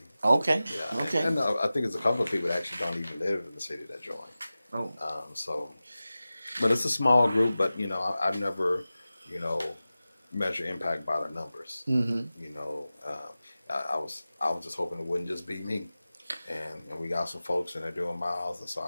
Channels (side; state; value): both; inverted; correlation -0.96